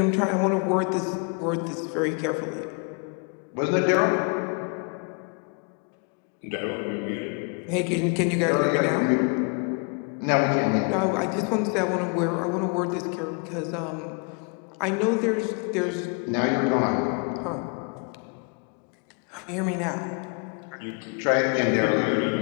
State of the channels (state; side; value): quieter; right; 36.8 dB